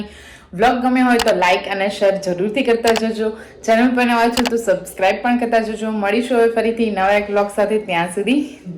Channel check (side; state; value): both; identical; correlation 1.00